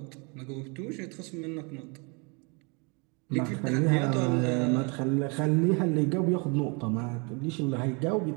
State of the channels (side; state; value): left; quieter; 32.0 dB